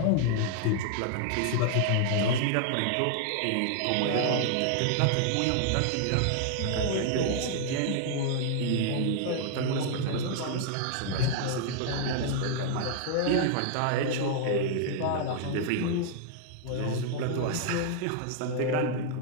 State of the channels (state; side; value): different; both; correlation 0.00